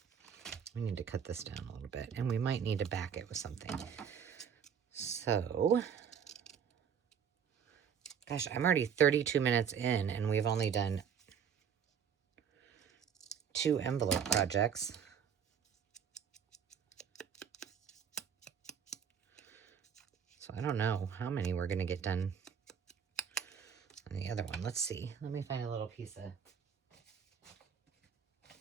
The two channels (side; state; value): left; quieter; 7.5 dB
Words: We need to cut this down a little bit, and we might need to back it with something. So, gosh, I'm already 32 minutes in, and we've only done 2 envelope projects. So I don't know how many we're going to get done on the other one. Let's see. Let me find a little piece of...